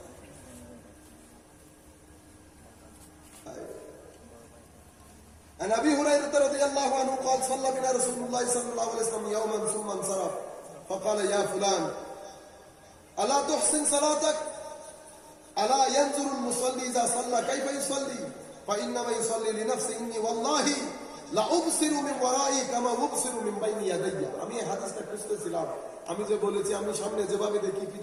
عن ابي هريره رضي الله عنه قال صلى بنا رسول الله صلى الله عليه وسلم يوما ثم انصرف فقال يا فلان الا تحسن صلاتك الا ينظر المصلي اذا صلى كيف يصلي فانما يصلي لنفسه اني والله لا ابصر من ورائي كما ابصر من بين يدي। আমি এই হাদিসটা খুঁজতেছিলাম, আমি যে বলেছি আমি সামনে যেভাবে দেখি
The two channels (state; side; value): identical; both; correlation 1.00